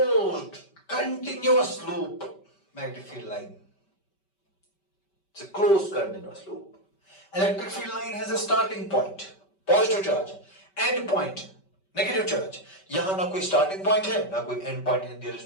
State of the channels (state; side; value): late; right; 5.2 ms